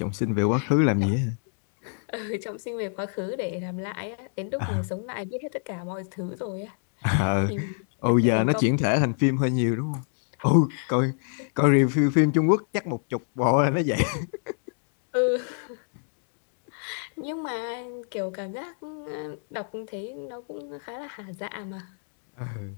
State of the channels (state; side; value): silent; right; 60 dB below the other